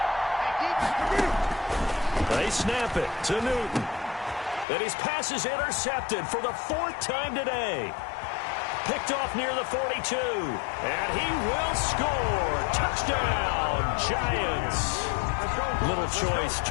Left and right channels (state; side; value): drops out; right; at 4.7 s